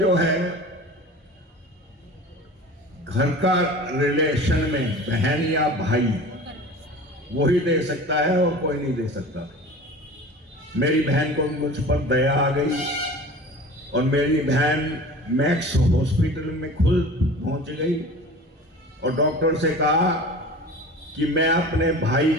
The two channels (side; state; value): both; normal; correlation 0.38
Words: है घर का रिलेशन में बहन या भाई वही दे सकता है और कोई नहीं दे सकता। मेरी बहन को मुझ पर दया आ गई और मेरी बहन मैक्स हॉस्पिटल में खुद पहुंच गई और डॉक्टर से कहा कि मैं अपने भाई